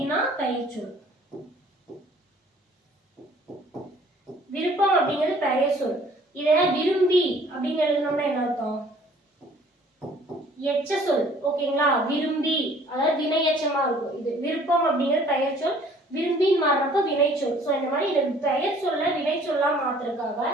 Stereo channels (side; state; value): both; normal; correlation 0.55